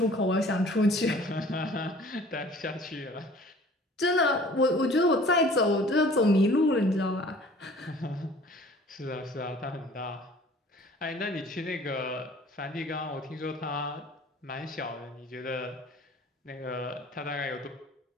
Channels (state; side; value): normal; both; correlation 0.50